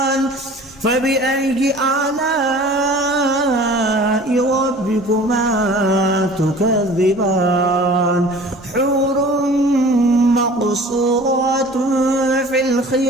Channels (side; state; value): both; normal; correlation 0.45